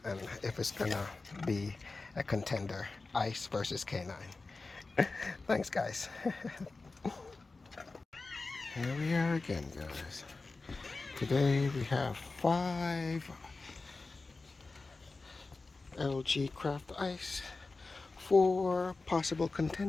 if it's gonna be a contender, ice versus canine. Thanks, guys. Here we are again, guys. Today we have 5 LG Craft Ice, 4 possible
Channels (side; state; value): right; quieter; 3.7 dB